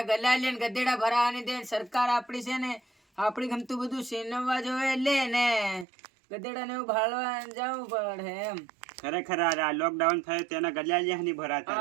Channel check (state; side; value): drops out; left; at 5.9 s